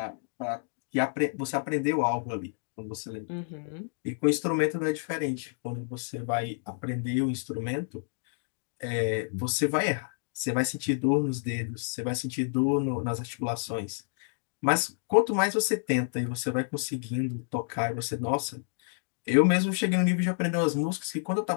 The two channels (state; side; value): silent; right; digital silence